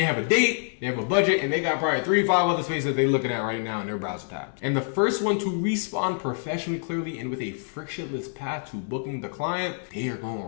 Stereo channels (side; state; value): right; silent; digital silence